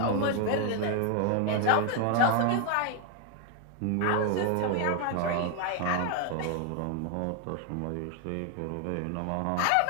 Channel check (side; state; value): both; different; correlation 0.01